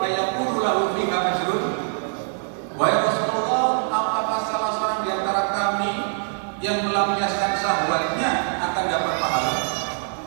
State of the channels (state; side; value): silent; left; 62 dB below the other